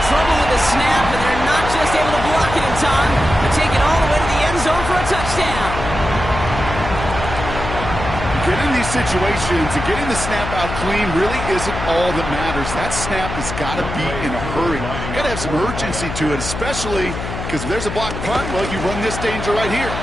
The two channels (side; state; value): left; noise; hum, 6 dB below the sound